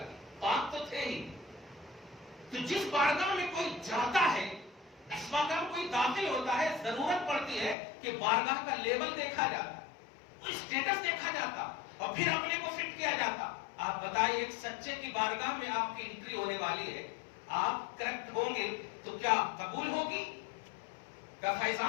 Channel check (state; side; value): drops out; right; at 7.8 s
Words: پاک تو تھے ہی. تو جس بارگاہ میں کوئی جاتا ہے, اس بارگاہ میں کوئی داخل ہوتا ہے, ضرورت پڑتی ہے کہ بارگاہ کا لیول دیکھا جاتا, اسٹیٹس دیکھا جاتا, اور پھر اپنے کو فٹ کیا جاتا. آپ بتائیے, ایک سچے کی بارگاہ میں آپ کی انٹری ہونے والی ہے, آپ کریکٹ ہوں گے تو کیا قبول ہوگی؟ کیا